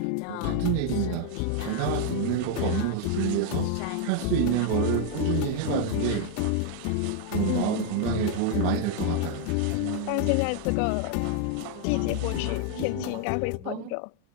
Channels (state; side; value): different; both; correlation 0.00